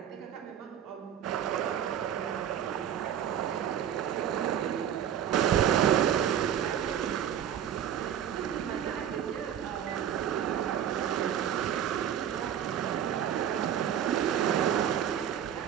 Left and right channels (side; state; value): left; quieter; 9.6 dB